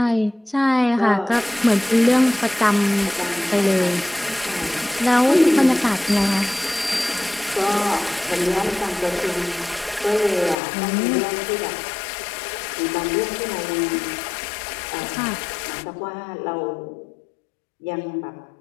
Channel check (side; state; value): right; drops out; at 10.6 s